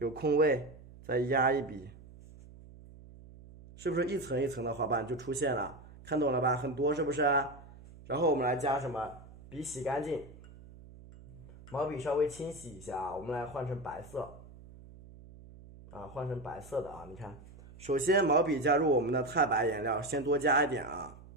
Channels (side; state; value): right; noise; hum, 19 dB below the sound